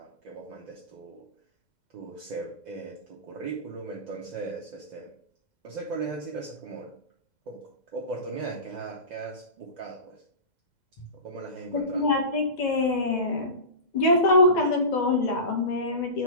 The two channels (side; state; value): right; late; 2.0 ms